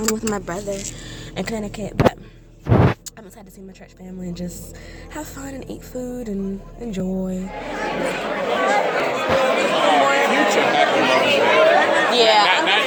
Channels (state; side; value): identical; both; correlation 1.00